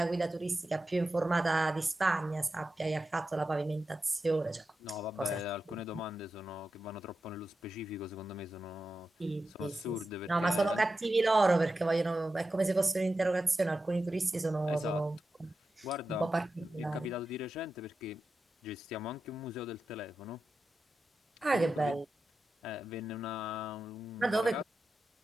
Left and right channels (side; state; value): both; normal; correlation 0.91